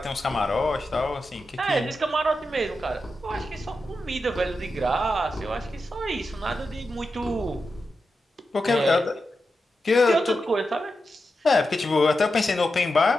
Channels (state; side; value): normal; both; correlation 0.89